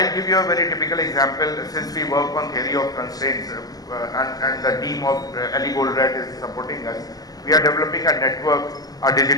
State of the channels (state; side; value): late; right; 0.18 ms